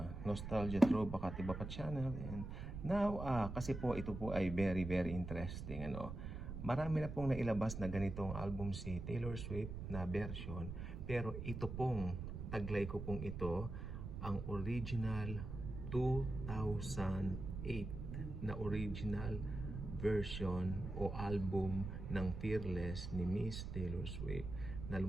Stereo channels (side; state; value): right; noise; rumble, 6 dB below the sound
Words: Nostalgia Throwback at Iba Pa channel. And now, kasi po ito po ay very interesting, ano? Marami na pong nailabas na ganitong album si Taylor Swift na version, pero ito pong taglay ko pong ito ang original 2008 na original version o album ng Fearless ni Miss Taylor Swift na